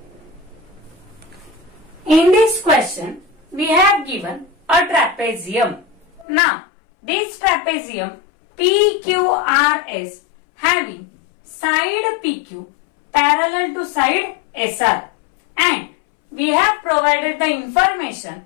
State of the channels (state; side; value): drops out; right; at 6.2 s